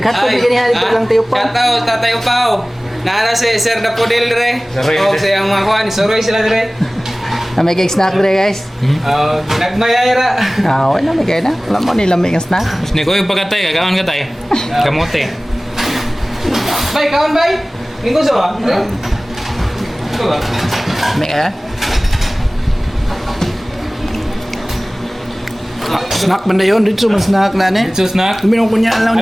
gini ha dito lang tayo pa. Shoutout Tatay Upaw. Naara si Sir Dapodil dire. O sa mga kuhan, suroy sila dire. May kay snack dire guys. Nagmayayra. Wala may kay na. Alam mo nila may snack. Ni ko yung pagkatay, kagawan ka tayo. Kamote. Bay, kawan bay. Minggo sa ba? Ito ba? May snack banda yun, dito man snack na ni. So snack. Minong kunya lang.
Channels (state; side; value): normal; both; correlation 0.98